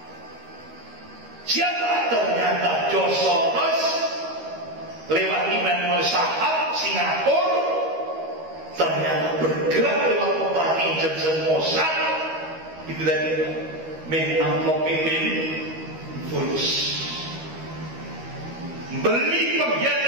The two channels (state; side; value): late; left; 13 ms